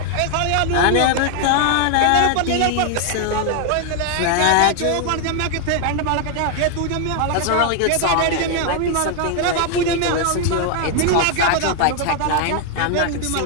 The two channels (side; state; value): both; different; correlation 0.00